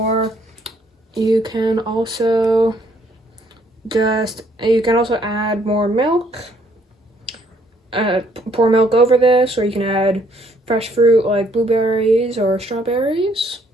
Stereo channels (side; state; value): both; normal; correlation 0.66